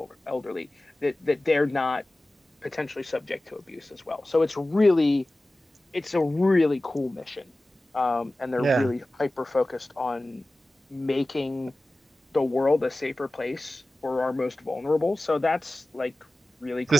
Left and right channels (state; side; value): normal; both; correlation 0.96